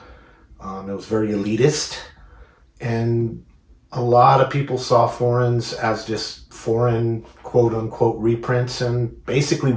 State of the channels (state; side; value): identical; both; correlation 1.00